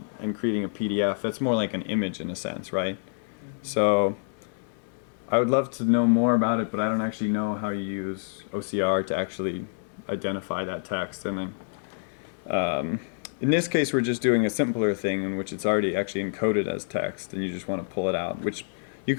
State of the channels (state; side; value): silent; right; digital silence